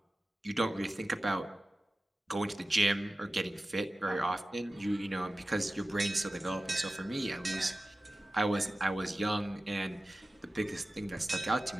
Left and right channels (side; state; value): both; normal; correlation 0.96